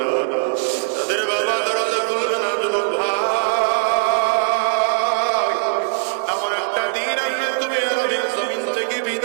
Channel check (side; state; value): left; silent; digital silence